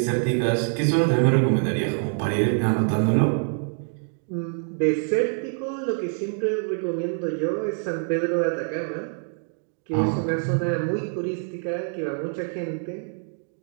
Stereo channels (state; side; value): silent; left; 55 dB below the other